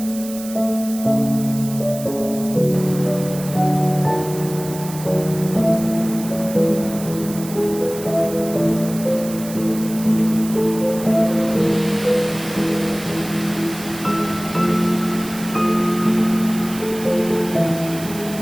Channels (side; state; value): right; noise; hiss, 13 dB below the sound